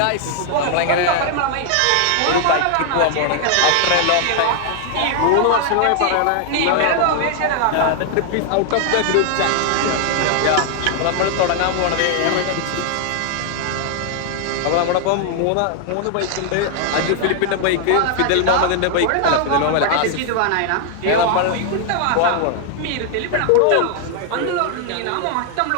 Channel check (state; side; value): different; both; correlation 0.00